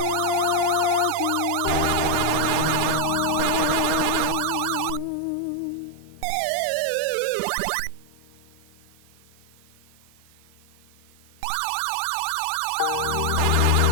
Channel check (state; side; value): different; both; correlation 0.00